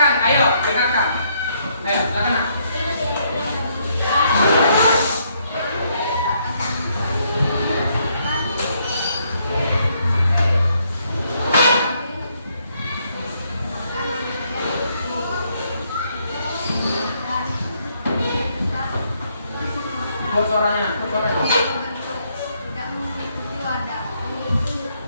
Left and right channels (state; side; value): inverted; both; correlation -0.72